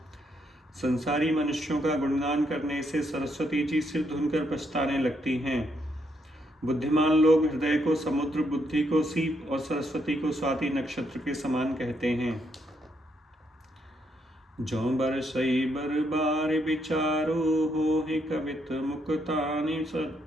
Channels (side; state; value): both; normal; correlation 0.76